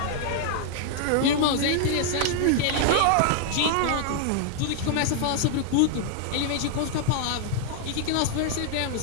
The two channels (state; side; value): different; both; correlation 0.00